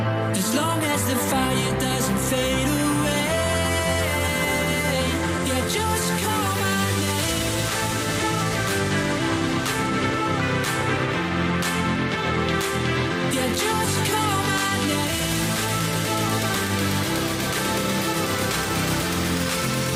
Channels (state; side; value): identical; both; correlation 1.00